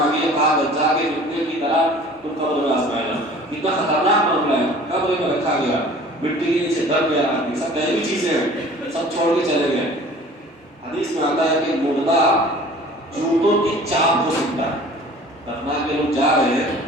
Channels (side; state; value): both; normal; correlation 0.47